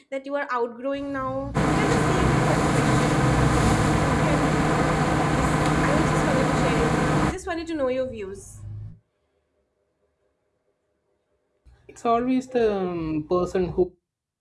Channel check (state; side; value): identical; both; correlation 1.00